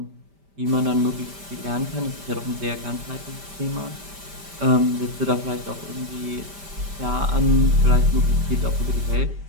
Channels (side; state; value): left; late; 5.1 ms